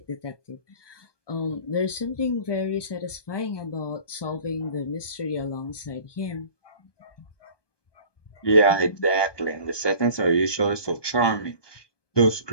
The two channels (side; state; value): right; late; 1.2 ms